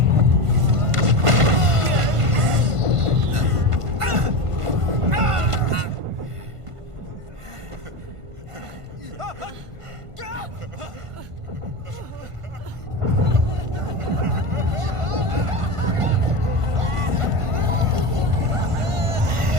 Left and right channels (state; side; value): late; left; 1.5 ms